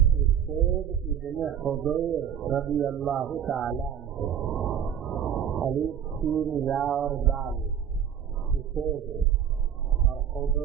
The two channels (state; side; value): quieter; left; 9.0 dB